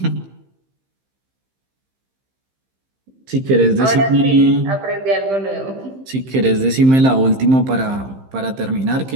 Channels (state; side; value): late; left; 15 ms